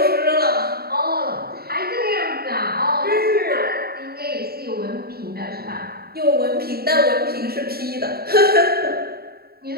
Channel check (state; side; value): late; left; 0.45 ms